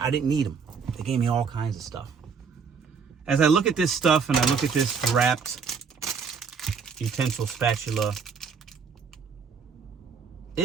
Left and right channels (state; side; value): quieter; left; 5.8 dB